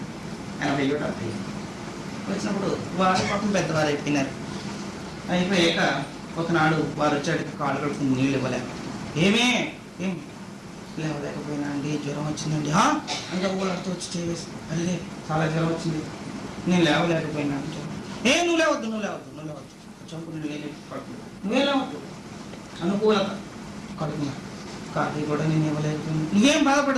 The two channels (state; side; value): identical; both; correlation 1.00